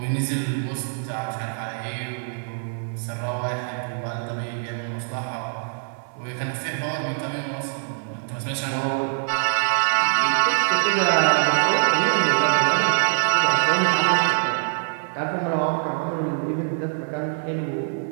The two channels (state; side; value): silent; left; digital silence